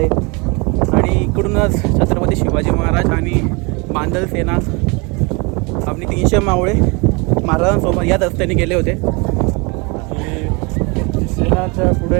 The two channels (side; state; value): left; quieter; 29.3 dB